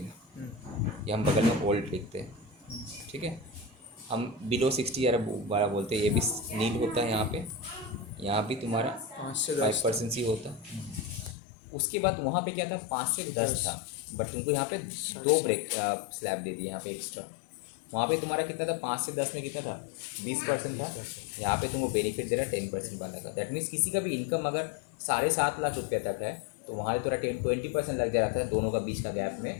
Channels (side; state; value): right; drops out; at 11.4 s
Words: है। ये हम बगल में ओल्ड लिखते हैं, ठीक है। हम बिलो 60 या 12 बोलते हैं, ये भी नील होता है यहाँ पे, यहाँ भी तुम्हारा 5 से 10 5% ही होता। उसके बाद वहाँ पे क्या था 5 से 10 था, बट तुमको यहाँ पे 2 ब्रेक स्लैब दे दिए यहाँ पे एक्स्ट्रा। वहाँ पे तुम्हारा कितना था 5 से 10 में कितना था 20% था, यहाँ पे तुमको बेनिफिट दे रहा है 10% वाला का। दैट मीन्स किसी का भी इनकम अगर 7.5 लाख रुपये तक है तो वहाँ से थोड़ा 20% लग जा रहा था दोनों का बीच का गैप